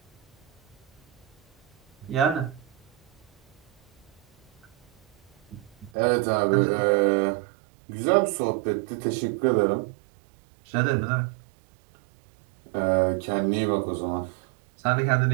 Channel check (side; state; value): left; drops out; at 5.9 s